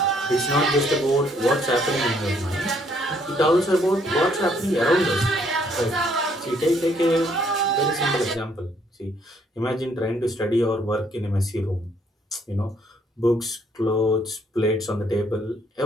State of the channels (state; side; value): normal; both; correlation 0.67